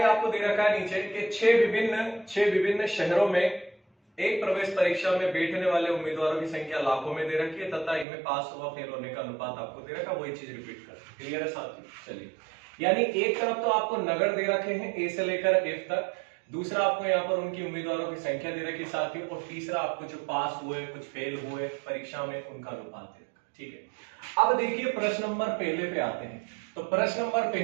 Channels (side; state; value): left; drops out; at 8.1 s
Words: आपको दे रखा है नीचे कि 6 विभिन्न शहरों में एक प्रवेश परीक्षा में बैठने वाले उम्मीदवारों की संख्या लाखों में दे रखी है तथा इनमें पास व फेल होने का अनुपात आपको दे रखा है। वही चीज रिपीट कर, क्लियर है साथियों? चलिए, यानी एक तरफ तो आपको नगर दे रखे हैं ए से लेकर एफ तक, दूसरा आपको यहाँ पर उनकी उम्मीदवारों की संख्या दे रखी साथियों, और तीसरा आपको जो पास हुए कुछ फेल हुए परीक्षा में उनका अनुपात दे रखा, ठीक है। अब देखिए प्रश्न नंबर पहले पे आते हैं। तो प्रश्न नंबर